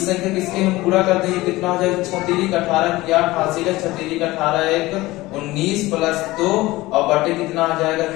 संख्या किसके हम पूरा कर देंगे कितना हो जाएगा 6×3 = 18 क्या हासिल है 6×3 = 18 1 19 + 2 और बटे कितना आ जाएगा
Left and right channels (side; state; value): right; quieter; 19.1 dB